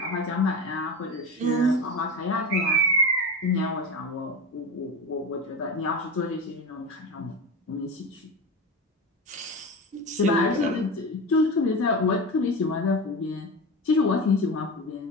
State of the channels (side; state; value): both; normal; correlation 0.25